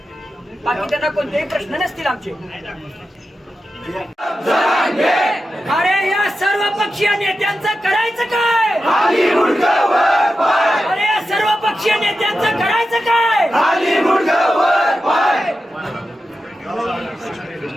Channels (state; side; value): normal; both; correlation 0.91